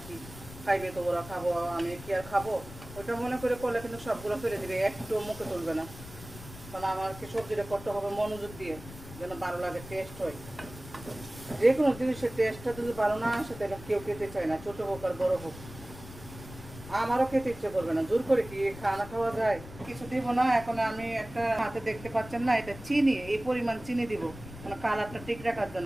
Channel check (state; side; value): noise; left; rumble, 15 dB below the sound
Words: কি খাইবে, তো ওরা খাবো, আমি কি আর খাবো, ওইটা মনে করে করলে কিন্তু সবগুলো ফেলে দিবে, একটু মুখে তুলবে না। কারণ আমার কি সবজিটা করতে হবে মনোযোগ দিয়ে, যেন ভালো লাগে, টেস্ট হয়। যে কোনো জিনিসের টেস্টটা যদি ভালো না আসে, তাহলে কেউ খেতে চায় না, ছোটো হোক আর বড়ো হোক। আমারও খেতে ইচ্ছে করবে না, জোর করে কি খানা খাওয়া যায়? কিছু দিব না। এখন আমি একটা হাতে দেখতে পাচ্ছেন না, এটা চিনি, এই পরিমাণ চিনি দিব, মানে কালারটা ঠিক রাখার